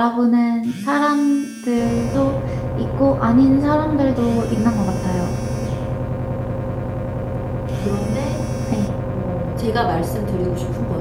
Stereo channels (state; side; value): identical; both; correlation 1.00